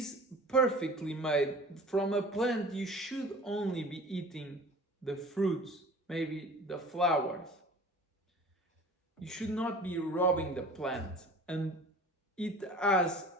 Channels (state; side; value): normal; both; correlation 0.42